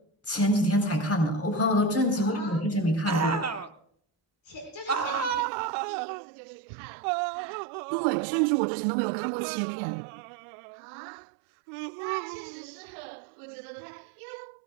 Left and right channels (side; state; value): left; drops out; at 5.5 s